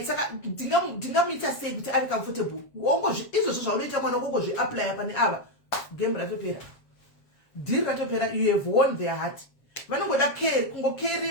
saka ndingamuita sei kuti ave comfortable izvozvo zvaunoita mwana ukongozviaplya pane ava game ratopera deal ratopera. You have won their heart. Vanongoda care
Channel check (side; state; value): right; late; 7.3 ms